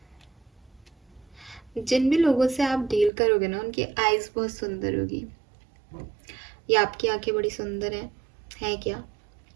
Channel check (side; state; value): left; drops out; at 3.1 s